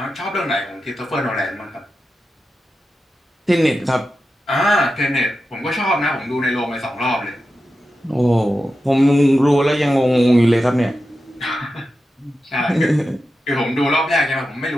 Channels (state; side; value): normal; both; correlation 0.91